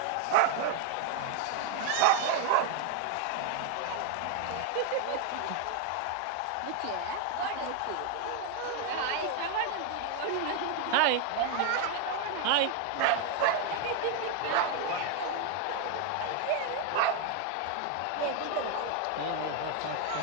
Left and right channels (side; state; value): both; different; correlation 0.01